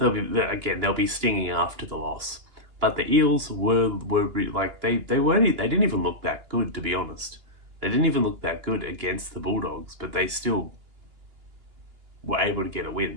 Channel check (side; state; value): left; late; 2.9 ms